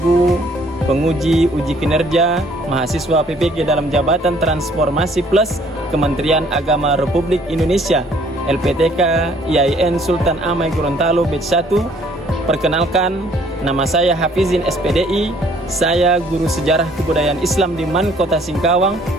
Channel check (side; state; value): both; normal; correlation 0.60